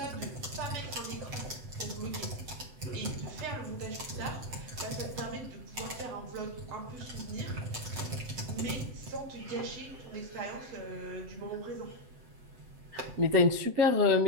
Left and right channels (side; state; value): left; late; 7.8 ms